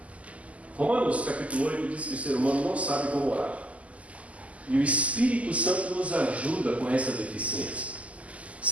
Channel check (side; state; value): left; late; 0.068 ms